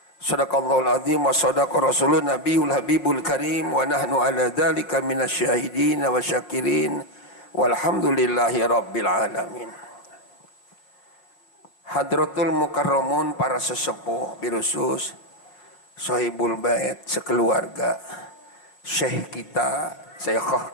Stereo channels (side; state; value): right; late; 5.3 ms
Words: Sadaqallahul azim wa sadaqa rasulun nabiyul habibul karim wa nahnu ala dzalika minasyahidin wa syakirin walhamdulillahi rabbil alamin. Hadratul mukarramun, para sesepuh birusus, sahibul bait sekeluarga, syekh kita, syekhah